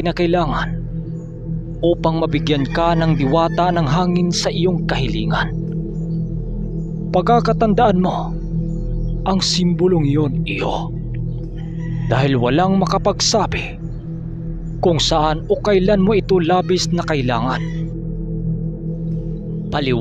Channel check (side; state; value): both; identical; correlation 1.00